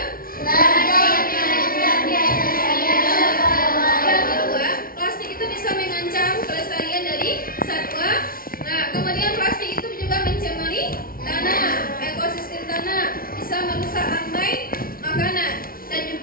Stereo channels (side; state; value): right; late; 0.43 ms